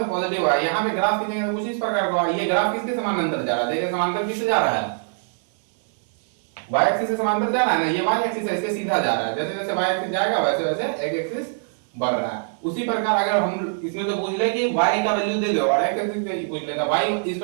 पॉजिटिव है। यहां पे ग्राफ खींचेंगे तो कुछ इस प्रकार का, ये ग्राफ किसके समानांतर जा रहा है, देखिए समांतर किससे जा रहा है, y एक्सिस से समांतर जा रहा है ना, ये y एक्सिस है, इससे सीधा जा रहा है। जैसे जैसे y एक्सिस जाएगा वैसे वैसे x एक्सिस बढ़ रहा है। उसी प्रकार अगर हम इसमें से पूछ ले कि y का वैल्यू दे दो और x एक्सिस से पूछ लेता, y =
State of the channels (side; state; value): left; silent; 63 dB below the other